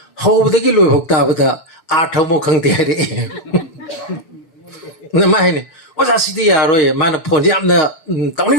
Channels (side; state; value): right; late; 6.9 ms